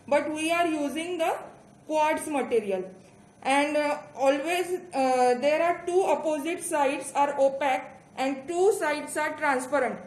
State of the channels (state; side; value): identical; both; correlation 1.00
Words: But we are using the quartz material. And always there are two opposite sides are opaque and two sides are transparent.